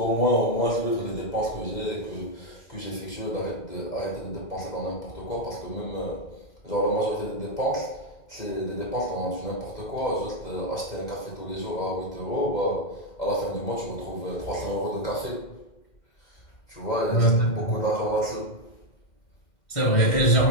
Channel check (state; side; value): late; right; 2.1 ms